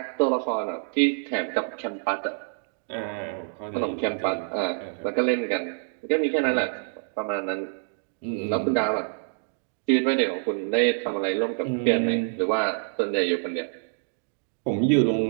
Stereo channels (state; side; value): silent; left; digital silence